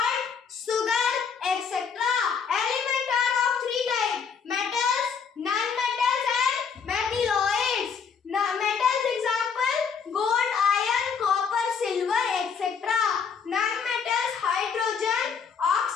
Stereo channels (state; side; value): quieter; right; 6.3 dB